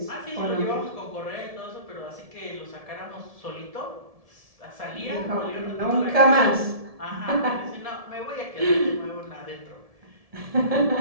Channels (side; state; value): left; late; 1.7 ms